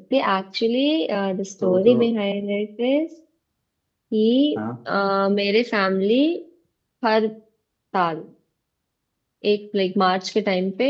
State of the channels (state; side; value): identical; both; correlation 1.00